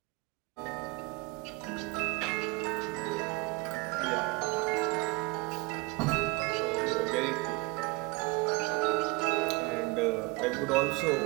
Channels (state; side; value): quieter; left; 25.3 dB